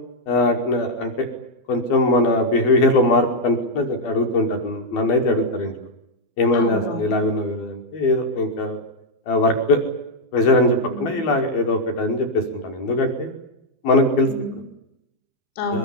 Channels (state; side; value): late; right; 12 ms